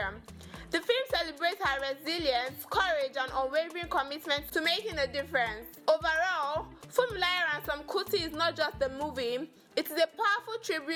The film celebrates her resilience, courage, and unwavering commitment to making a difference. Overall, Funmilayo Ransom Kuti is not just a movie, it is a powerful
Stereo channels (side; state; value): both; identical; correlation 1.00